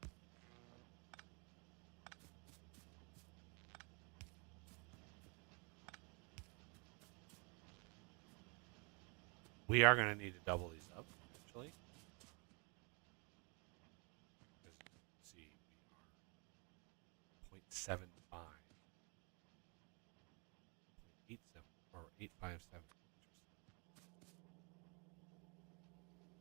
We are going to need to double these up eventually. As you can see, we are 0.75. 0.87 or 857.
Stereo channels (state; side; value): quieter; left; 33.4 dB